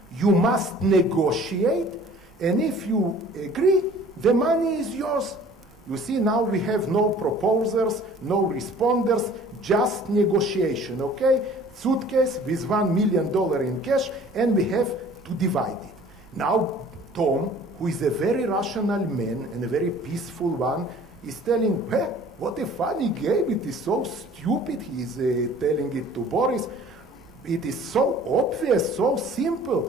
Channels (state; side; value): noise; right; rumble, 27 dB below the sound